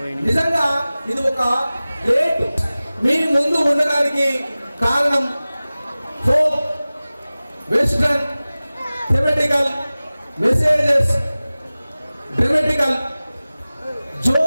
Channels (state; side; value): inverted; both; correlation -0.98